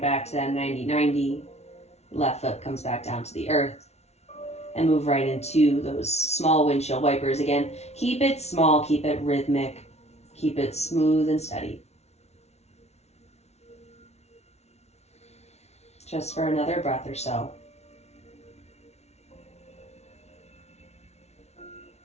to that 90-90. Left foot comes back down to the earth. And move right into those small windshield wipers. Again, keep it small, keep it rhythmic, keep it smooth and steady. Just for another breath or so.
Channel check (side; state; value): right; late; 0.31 ms